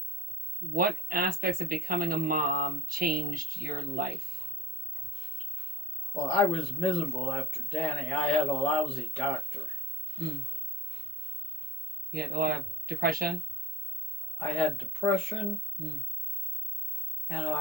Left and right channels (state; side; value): normal; both; correlation 0.55